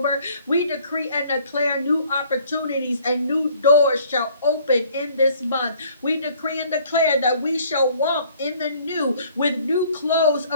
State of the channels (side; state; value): both; inverted; correlation -0.58